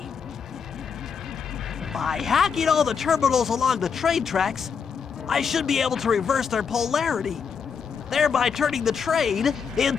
By hacking all the terminals along the train tracks, I should be able to reverse their polarity, thereby turning the train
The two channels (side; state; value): right; quieter; 6.3 dB